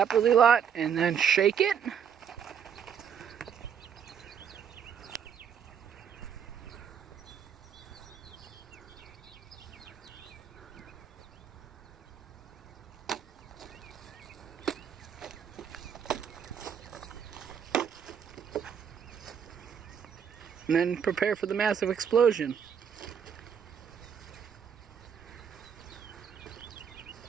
really lot and then shake it. And then prepare for the massive explosion.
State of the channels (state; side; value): quieter; left; 7.8 dB